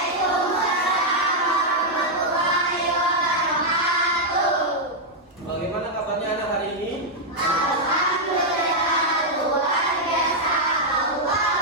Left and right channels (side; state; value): both; normal; correlation -0.03